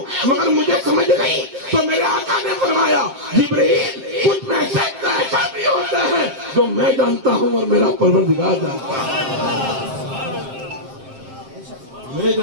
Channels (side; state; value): left; late; 7.6 ms